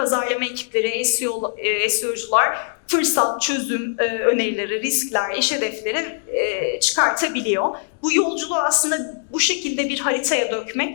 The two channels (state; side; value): silent; right; digital silence